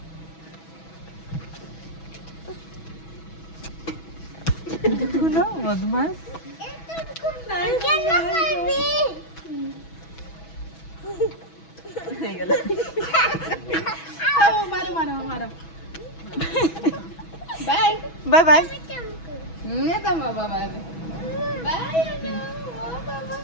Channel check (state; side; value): late; right; 6.1 ms